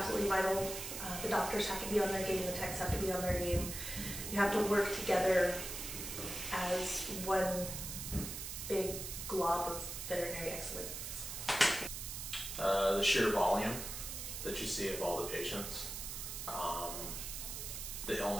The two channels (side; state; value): right; noise; hiss, 6 dB below the sound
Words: vital. The doctors have to be on their game, the techs have to be on their game. You have to work together as one big glob of veterinary excellence. The sheer volume that you see of all the patients, the